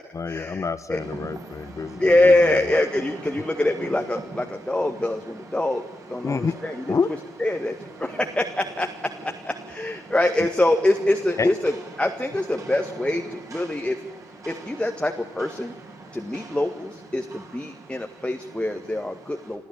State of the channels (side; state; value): both; normal; correlation 0.90